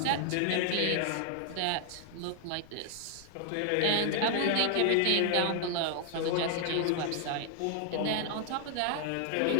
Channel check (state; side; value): different; both; correlation 0.00